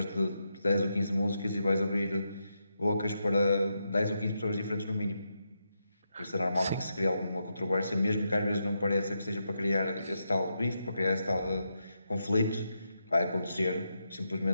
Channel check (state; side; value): inverted; both; correlation -0.84